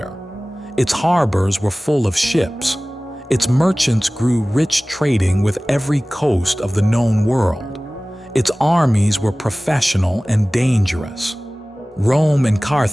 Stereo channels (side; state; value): both; normal; correlation 0.98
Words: Its harbors were full of ships. Its merchants grew rich trading with every coast of the known world. Its armies were professional and dangerous. Rome and